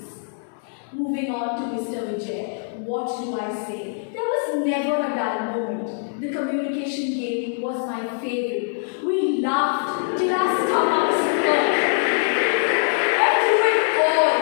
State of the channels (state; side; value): silent; right; digital silence